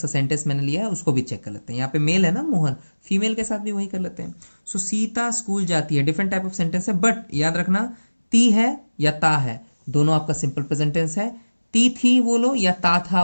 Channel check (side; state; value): both; inverted; correlation -1.00